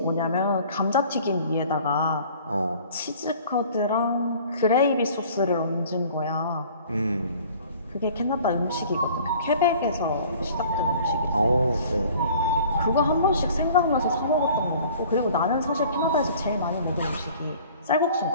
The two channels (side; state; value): both; inverted; correlation -0.50